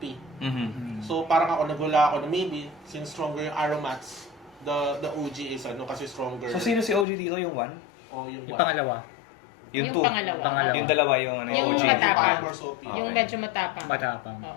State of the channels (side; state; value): right; drops out; at 7.1 s